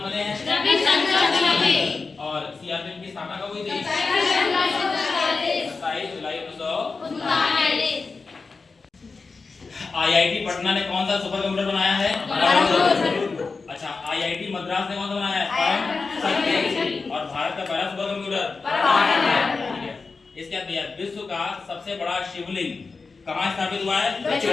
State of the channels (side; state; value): right; quieter; 4.3 dB